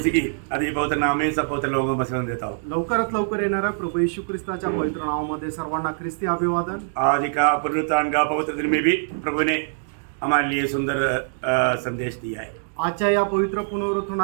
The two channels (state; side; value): silent; left; digital silence